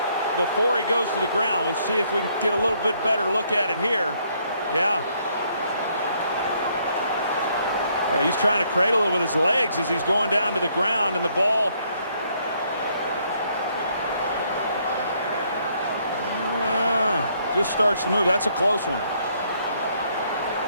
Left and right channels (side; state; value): both; inverted; correlation -0.69